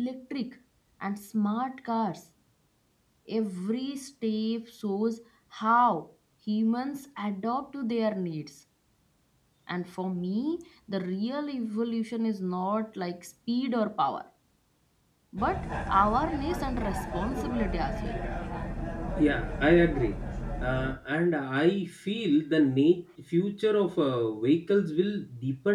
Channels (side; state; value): both; identical; correlation 1.00